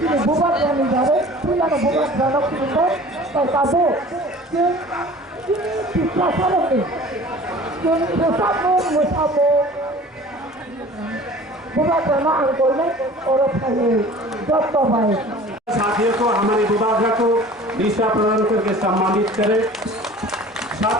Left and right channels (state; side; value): normal; both; correlation 0.44